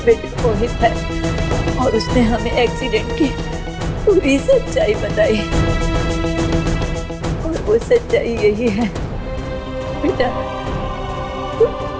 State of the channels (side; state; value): both; identical; correlation 1.00